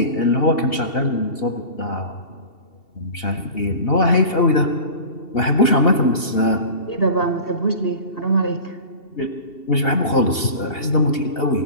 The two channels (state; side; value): late; right; 2.7 ms